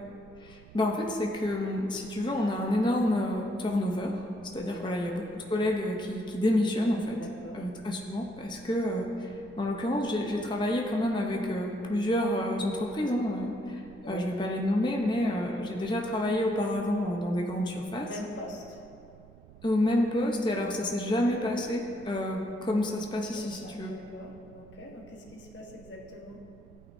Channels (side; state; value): right; noise; rumble, 22 dB below the sound